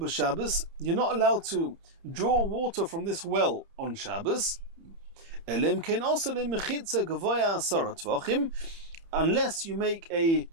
You're not allowed to draw water from this well on Shabbos. Elim kein also lemechitza gavoya asara tvachim, unless you make a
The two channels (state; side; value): late; left; 30 ms